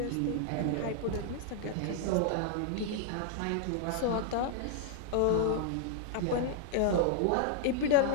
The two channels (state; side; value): different; both; correlation -0.01